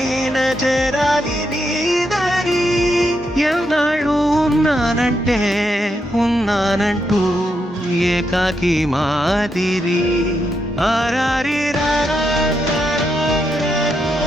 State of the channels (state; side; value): normal; both; correlation 0.82